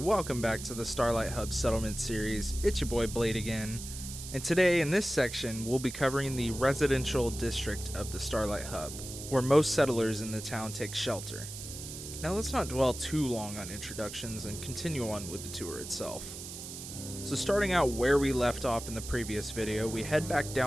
back to the Starlight Hub Settlement Series. It's your boy Blade again, and today in this section we'll be covering the residential district of the Starlight Hub, where most settlers in the town take shelter. Now let's not dwell too long on introductions and continue on with the tour itself. So starting out where we left off in the previous video, we head back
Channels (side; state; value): right; noise; hiss, 10 dB below the sound